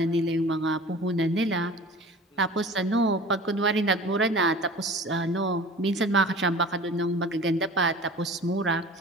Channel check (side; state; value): both; normal; correlation 0.41